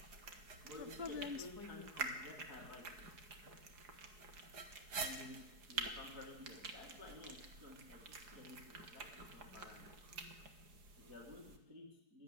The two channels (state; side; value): late; left; 4.7 ms